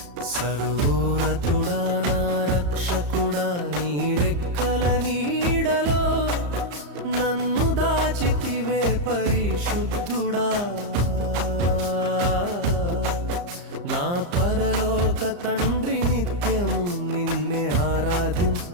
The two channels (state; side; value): late; left; 34 ms